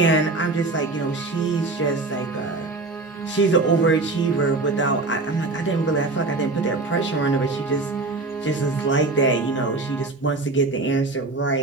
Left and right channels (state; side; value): quieter; left; 3.4 dB